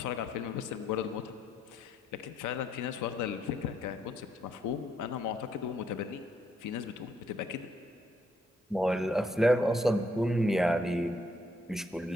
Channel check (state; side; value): normal; both; correlation 0.72